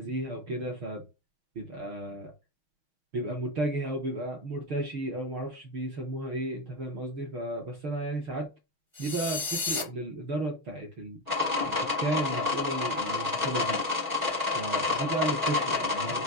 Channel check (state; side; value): late; left; 6.3 ms